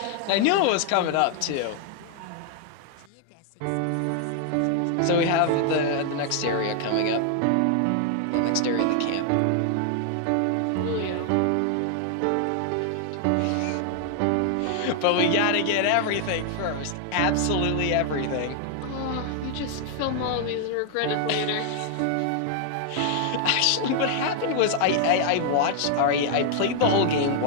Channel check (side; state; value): both; different; correlation 0.00